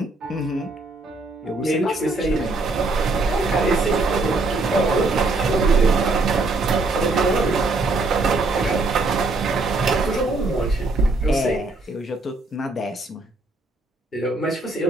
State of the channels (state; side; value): quieter; left; 3.2 dB